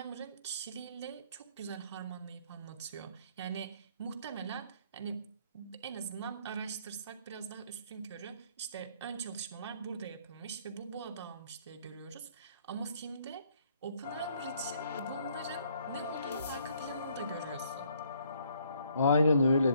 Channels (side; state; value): both; inverted; correlation -0.65